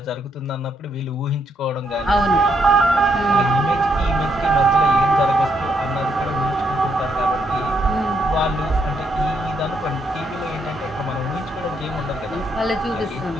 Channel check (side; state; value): both; normal; correlation 0.75